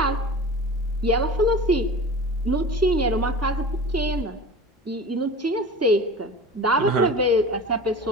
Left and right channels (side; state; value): both; normal; correlation 0.36